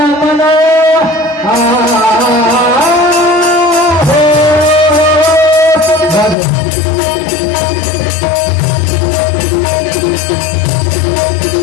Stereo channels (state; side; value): drops out; right; at 6.4 s